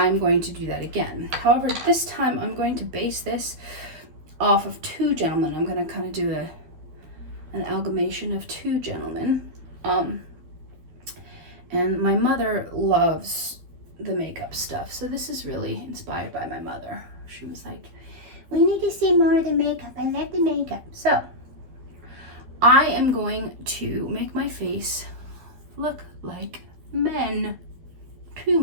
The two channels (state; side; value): late; left; 12 ms